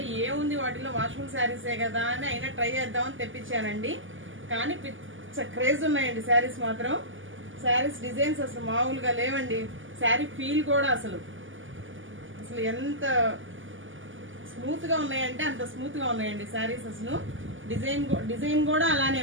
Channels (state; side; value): late; left; 0.57 ms